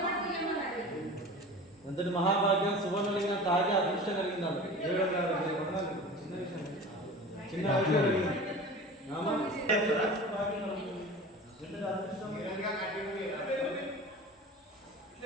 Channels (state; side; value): normal; both; correlation 0.36